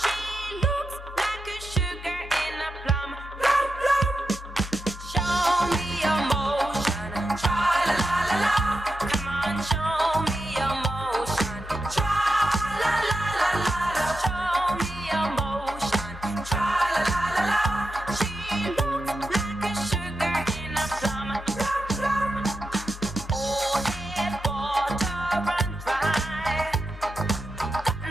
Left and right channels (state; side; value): normal; both; correlation 0.88